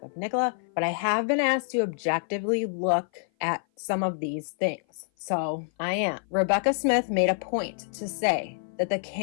of Nicola, but I have been asked to objectively look at some of these things. So I am. Rebecca Smith made a point to say that the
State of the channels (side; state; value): right; silent; 56 dB below the other